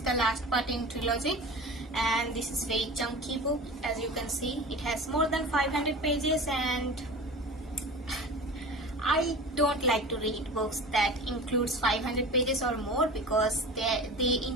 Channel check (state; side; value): normal; both; correlation 0.35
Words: the last part in trilogy, and this is very chunky book. As you can see, it has more than 500 pages, and I don't like to read books that includes 500 pages or more because they